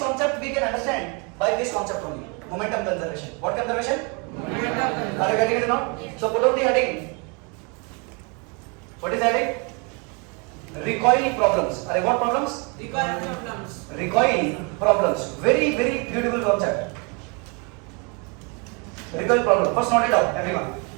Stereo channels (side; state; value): left; quieter; 32.7 dB